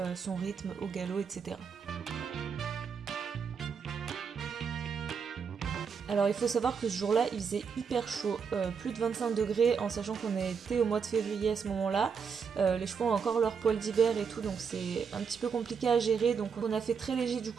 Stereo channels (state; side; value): quieter; left; 6.2 dB